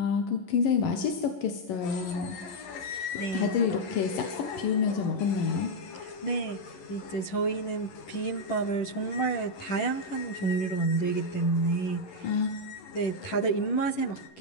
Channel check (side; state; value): right; late; 11 ms